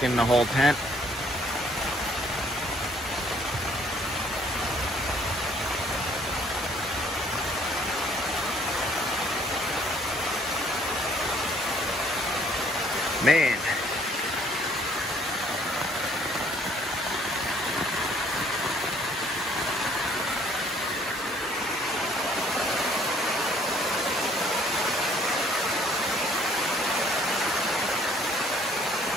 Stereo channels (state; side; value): normal; both; correlation 0.61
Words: the whole tent. Man.